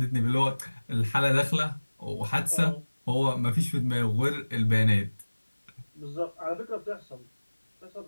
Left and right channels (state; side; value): inverted; both; correlation -1.00